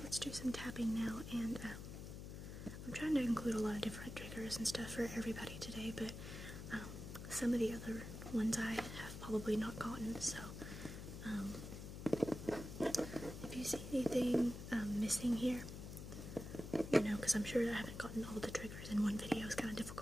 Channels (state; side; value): noise; left; hum, 9 dB below the sound